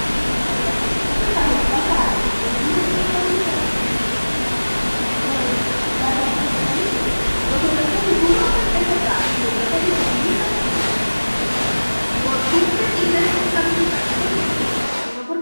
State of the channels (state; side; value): inverted; both; correlation -1.00